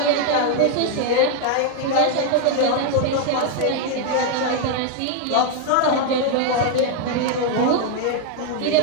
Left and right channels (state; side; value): different; both; correlation 0.01